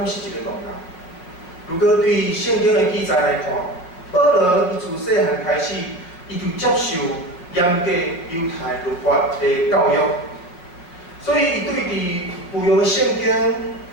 是一个戆人。如果对圣经的记载来看，保罗伊自细汉开始，伊就接受严格犹太律法的教育，所以伊对伫旧约的圣经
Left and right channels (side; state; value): right; late; 5.5 ms